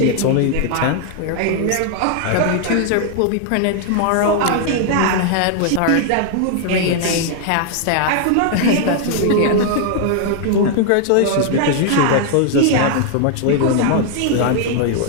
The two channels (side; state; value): both; different; correlation 0.00